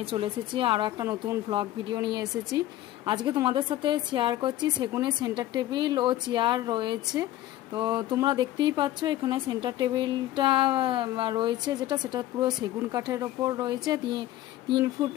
চলে এসেছি আরও একটা নতুন ভ্লগ ভিডিও নিয়ে এসেছি। আজকে তোমাদের সাথে শেয়ার করছি সেগুনের সেন্টার টেবিল ও চেয়ার রয়েছে। তো তোমরা দেখতেই পাচ্ছ এখানে সেন্টার টেবিলটা রয়েছে, সেটা পুরো সেগুন কাঠের ওপর রয়েছে, 3 ফুট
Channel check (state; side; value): quieter; right; 14.4 dB